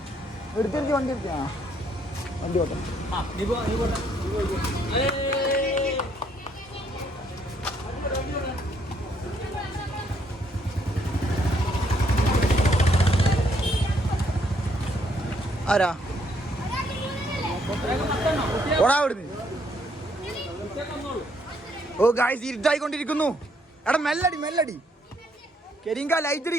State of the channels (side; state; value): both; normal; correlation 0.70